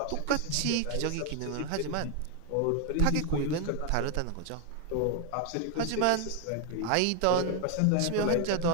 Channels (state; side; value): different; both; correlation 0.01